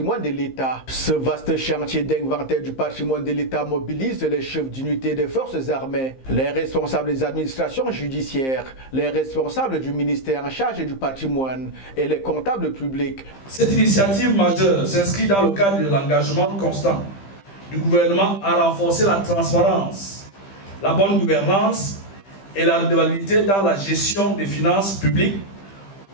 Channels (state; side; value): late; right; 15 ms